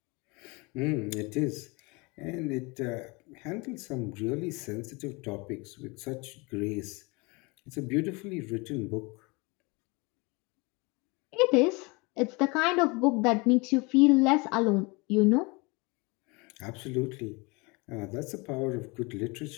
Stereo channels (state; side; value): quieter; right; 27.3 dB